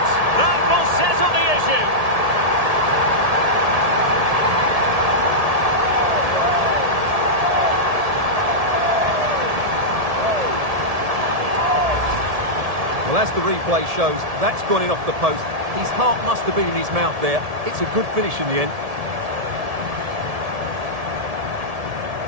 that will settle the issue. Well, as the replay shows, that's gone in off the post. His heart must have been in his mouth there. It's a good finish in the end.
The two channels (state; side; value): late; left; 1.7 ms